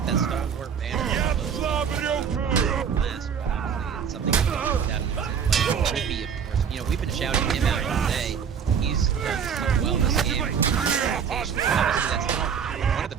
that stalwart banner. It's something that we can put down in his play. Rippy, of course. We've been shouting him out all day. He's done so well this game. Obviously, that's one of the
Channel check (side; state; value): left; quieter; 7.3 dB